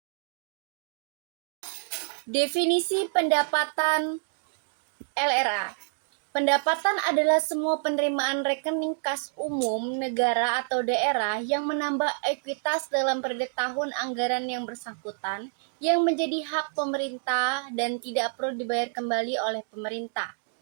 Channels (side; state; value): left; silent; digital silence